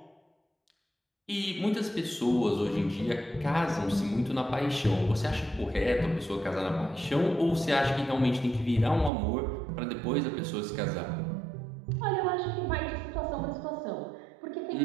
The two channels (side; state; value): left; drops out; at 9.1 s